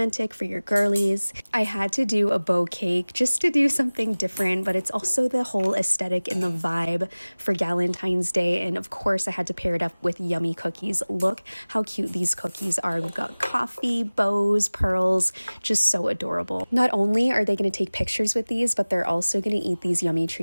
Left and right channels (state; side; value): inverted; both; correlation -1.00